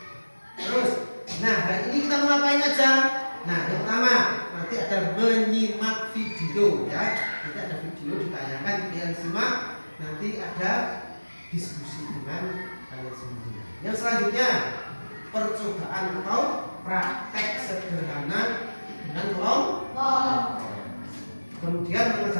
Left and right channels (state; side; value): inverted; both; correlation -1.00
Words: Terus, nah hari ini kita mau ngapain aja? Nah, yang pertama nanti ada menyimak video ya. Nanti ada video sebelum ditayangkan kalian simak, nanti ada diskusi dengan kalian semua. Yang selanjutnya percobaan atau praktek sederhana dengan kelompok. Kemudian